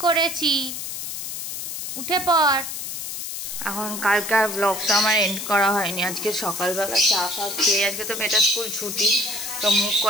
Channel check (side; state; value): left; noise; hiss, 6 dB below the sound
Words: করেছি, উঠে পড়। এখন কালকার ব্লগটা আমার এন্ড করা হয়নি। আজকে সকালবেলা চা খেয়ে, আজকে তো মেয়েটার স্কুল ছুটি, তো মুখ